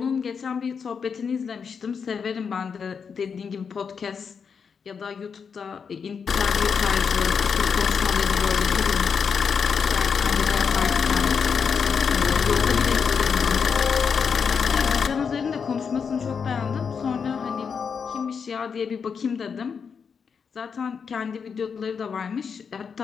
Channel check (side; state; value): right; quieter; 6.2 dB